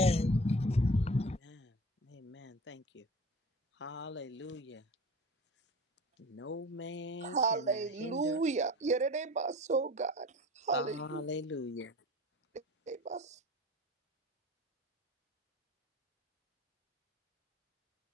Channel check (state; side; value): normal; both; correlation 0.39